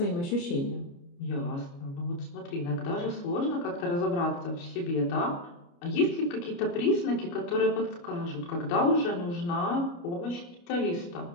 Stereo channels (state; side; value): late; right; 29 ms